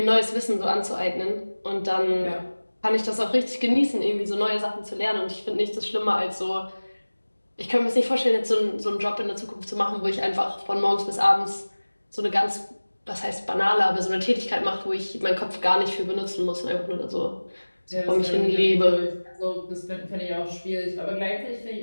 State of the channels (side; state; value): both; inverted; correlation -1.00